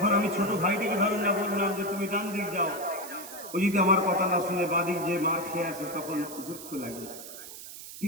আমি ছোট ভাইটাকে ধরে না বললাম যে তুমি ডান দিক যাও, ও যদি আমার কথা না শুনে বাদিক যে মার খেয়ে আসে, তখন দুঃখ লাগে।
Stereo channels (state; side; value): noise; right; hiss, 13 dB below the sound